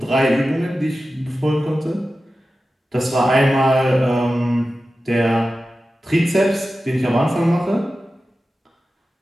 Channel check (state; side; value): normal; both; correlation 0.94